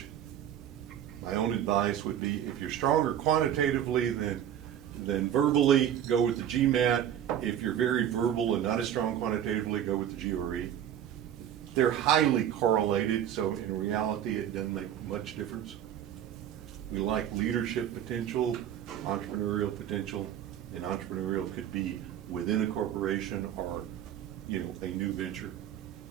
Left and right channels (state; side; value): quieter; left; 10.2 dB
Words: My own advice would be if you're stronger quantitatively than verbally, go with the GMAT. If you're very verbal and not as strong quantitatively, go with the GRE. They're highly correlated, so in reality it doesn't make much difference. We like leadership potential, entrepreneurial potential, and entrepreneurial could be within a corporation or, you know, a new venture.